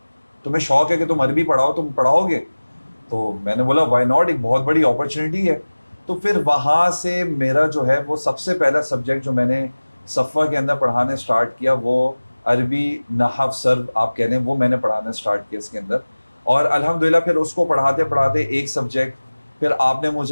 تمہیں شوق ہے کہ تم عربی پڑھاؤ، تم پڑھاؤ گے؟ تو میں نے بولا وائی ناٹ، ایک بہت بڑی اپرچونیٹی ہے. تو پھر وہاں سے میرا جو ہے وہ سب سے پہلا سبجیکٹ جو میں نے صفوہ کے اندر پڑھانے سٹارٹ کیا وہ عربی نحو سرو آپ کہہ لیں، وہ میں نے پڑھانا سٹارٹ کیا اس کے اندر. اور الحمدللہ پھر اس کو پڑھاتے پڑھاتے ایک سبجیکٹ، پھر آپ نے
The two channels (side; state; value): both; inverted; correlation -1.00